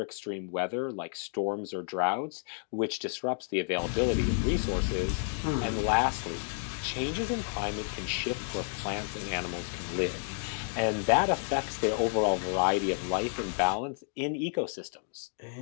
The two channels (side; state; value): right; silent; 57 dB below the other